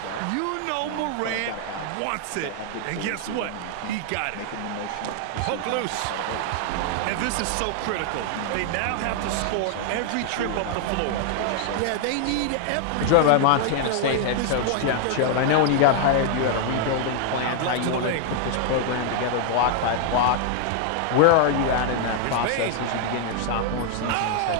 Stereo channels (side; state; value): both; different; correlation 0.00